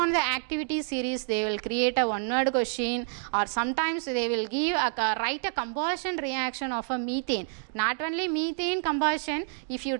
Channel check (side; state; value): left; silent; 58 dB below the other